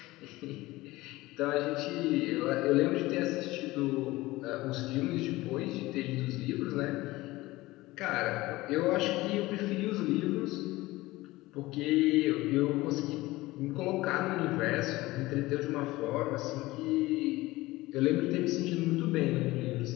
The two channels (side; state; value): right; quieter; 19.2 dB